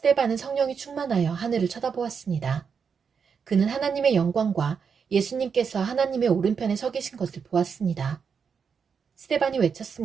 성령이 충만하여 하늘을 쳐다보았습니다. 그는 하나님의 영광과 예수님께서 하나님의 오른편에 서 계신 것을 보았습니다. 스데반이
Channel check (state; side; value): quieter; left; 6.3 dB